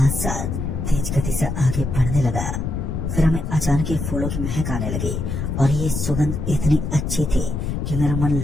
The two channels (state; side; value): noise; left; rumble, 3 dB below the sound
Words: साथ तेज गति से आगे बढ़ने लगा। फिर हमें अचानक ही फूलों की महक आने लगी और ये सुगंध इतनी अच्छी थी कि मेरा मन